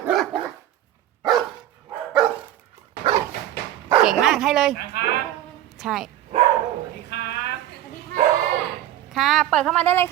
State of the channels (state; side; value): quieter; left; 12.7 dB